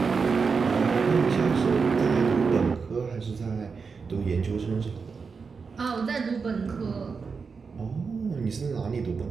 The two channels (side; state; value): left; quieter; 5.2 dB